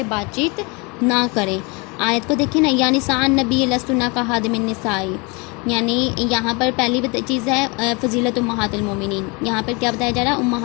بات چیت نہ کریں. آیت کو دیکھیں نا، یا نساء النبی لستن کاحد من النساء، یعنی یہاں پر پہلی چیز ہے فضیلت امہات المومنین. یہاں پر کیا بتایا جا رہا ہے؟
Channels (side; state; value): right; quieter; 28.9 dB